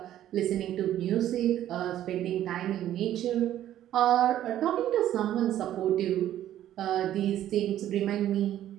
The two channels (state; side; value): quieter; left; 12.2 dB